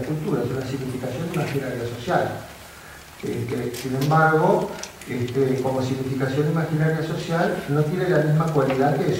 es una significación imaginaria social. Sin embargo, como significación imaginaria social, no tiene la misma cualidad que de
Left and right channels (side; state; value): both; identical; correlation 1.00